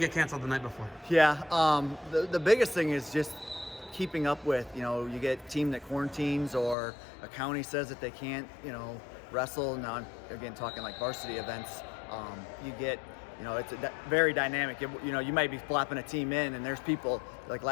canceled the night before? Yeah, the biggest thing is just keeping up with, you get a team that quarantines or a county says that they can't, wrestle. Now I'm, again, talking like varsity events. You get, it's very dynamic. You might be flopping a team in and there's people, like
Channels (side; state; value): right; drops out; at 6.8 s